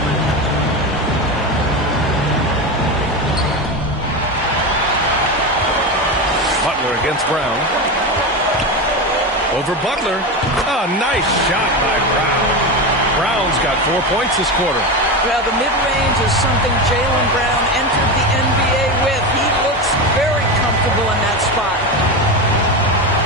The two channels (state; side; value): normal; both; correlation 0.19